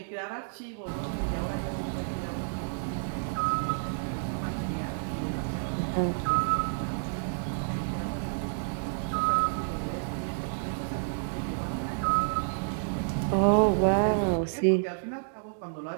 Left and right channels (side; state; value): left; silent; digital silence